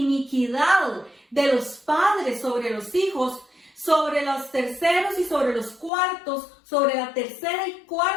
de los padres sobre los hijos, sobre los terceros y sobre los cuartos, sobre la tercera y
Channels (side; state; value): right; drops out; at 5.9 s